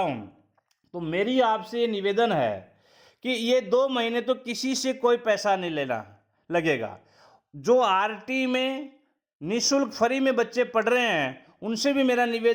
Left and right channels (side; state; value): both; identical; correlation 1.00